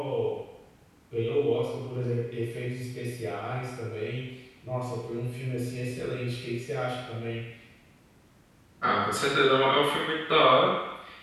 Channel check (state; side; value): identical; both; correlation 1.00